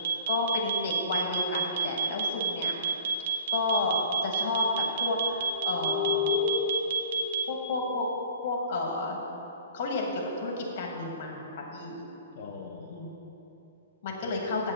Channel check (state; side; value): inverted; both; correlation -0.46